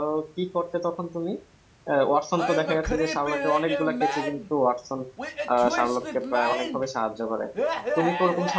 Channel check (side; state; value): both; identical; correlation 1.00